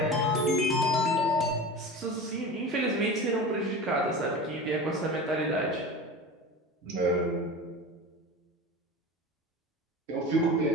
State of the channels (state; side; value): normal; both; correlation 0.32